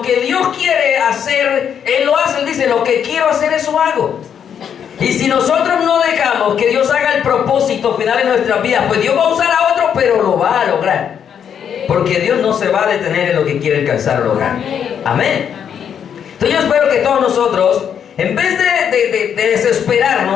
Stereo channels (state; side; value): quieter; right; 8.2 dB